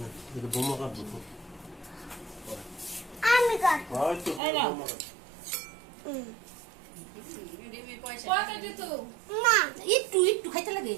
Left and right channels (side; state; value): left; drops out; at 4.4 s